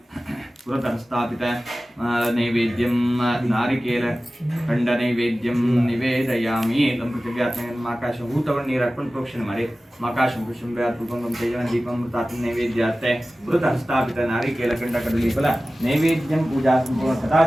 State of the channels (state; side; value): normal; both; correlation 0.96